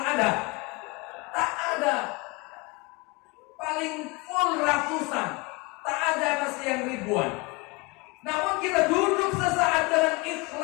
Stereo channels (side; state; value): right; quieter; 26.2 dB